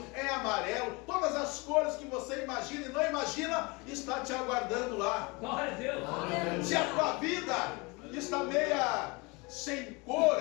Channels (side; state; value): right; quieter; 27.1 dB